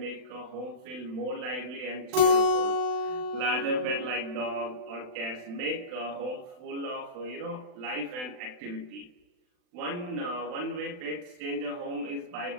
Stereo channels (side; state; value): left; late; 39 ms